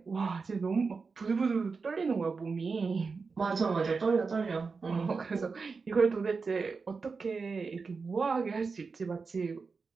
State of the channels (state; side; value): quieter; left; 4.7 dB